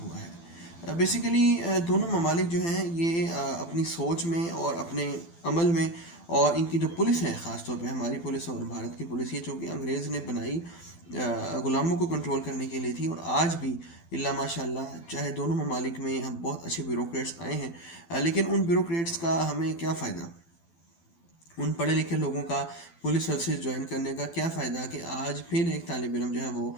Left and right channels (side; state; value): right; late; 12 ms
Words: ہوا ہے۔ بیسیکلی دونوں ممالک جو ہیں یہ اپنی سوچ میں اور اپنے عمل میں، اور ان کی جو پولیس ہے، خاص طور پہ ہماری پولیس اور بھارت کی پولیس، یہ چونکہ انگریز نے بنائی غلاموں کو کنٹرول کرنے کے لیے تھی، اور آج بھی اللہ ماشاء اللہ چاہے دونوں ممالک میں ہم بہت اچھے بیوروکریٹس آئے ہیں، لیکن ان بیوروکریٹس کا ہمیں کیا فائدہ؟ ان پڑھے لکھے لوگوں کا پولیس سروسز جوائن کرنے کا کیا فائدہ کہ آج پھر ایک طالب علم جو ہے وہ